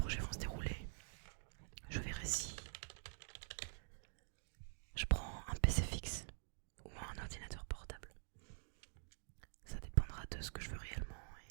vont se dérouler, je verrai si je prends un PC fixe ou un ordinateur portable. Ça dépendra de ce que je veux réellement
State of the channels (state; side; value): silent; left; digital silence